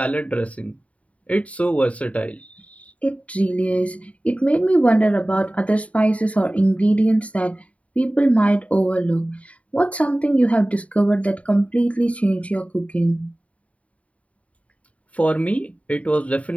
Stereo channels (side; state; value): right; late; 0.066 ms